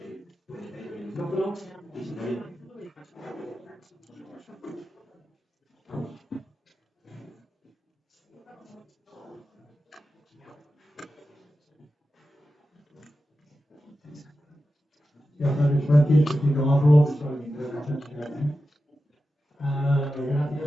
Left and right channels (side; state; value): both; normal; correlation 0.92